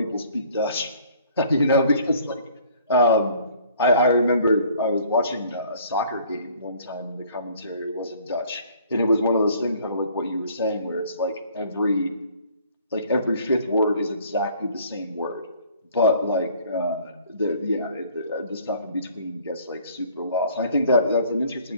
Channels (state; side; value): inverted; both; correlation -0.56